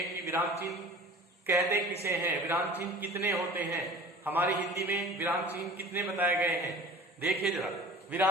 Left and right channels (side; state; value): both; normal; correlation 0.42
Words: विराम चिन्ह कहते किसे हैं, विराम चिन्ह कितने होते हैं। हमारी हिंदी में विराम चिन्ह कितने बताए गए हैं, देखिए जरा।